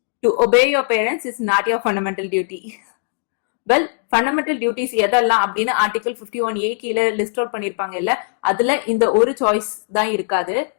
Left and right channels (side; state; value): right; silent; digital silence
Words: to obey your parents is not your fundamental duty. Well, fundamental duties எதெல்லாம் அப்படின்னு article 51A கீழே list out பண்ணிருப்பாங்க இல்ல, அதுல இந்த ஒரு choice தான் இருக்காது.